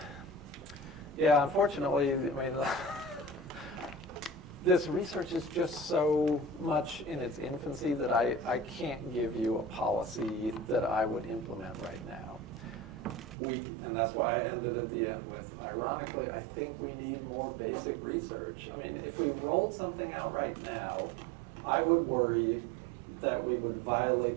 Unfortunately, I mean, this research is just so much in its infancy that I can't give you a policy that I would implement right now. And that's why I ended at the end with, ironically, I think we need more basic research. I mean, if we rolled something out right now, I would worry that we would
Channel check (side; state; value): left; drops out; at 13.4 s